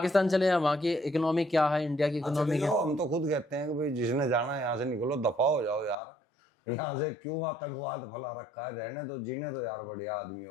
चले हैं, वहाँ की इकोनॉमी क्या है, इंडिया की इकोनॉमी क्या? हम तो खुद कहते हैं कि भाई जिसने जाना है यहाँ से निकलो, दफा हो जाओ यार, यहाँ से क्यों आतंकवाद फैला रखा है, रहने तो, जीने तो यार बढ़िया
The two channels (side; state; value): right; drops out; at 6.0 s